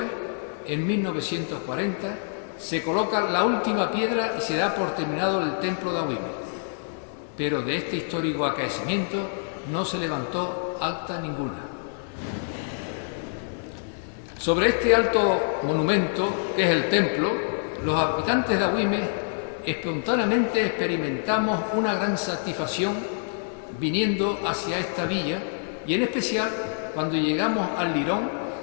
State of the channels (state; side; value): silent; right; digital silence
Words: en 1940, se coloca la última piedra y se da por terminado el templo de Agüime. Pero de este histórico acaecimiento no se levantó acta ninguna. Sobre este alto monumento, que es el templo, los habitantes de Agüime espontáneamente experimentamos una gran satisfacción viniendo hacia esta villa, y en especial cuando llegamos al Lirón